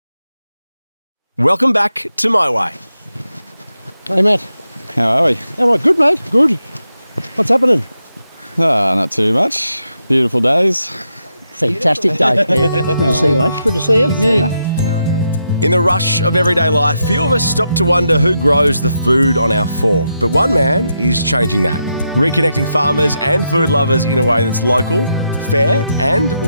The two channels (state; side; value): inverted; both; correlation -0.84